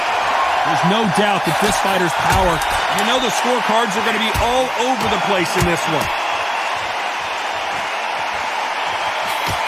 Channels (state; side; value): identical; both; correlation 1.00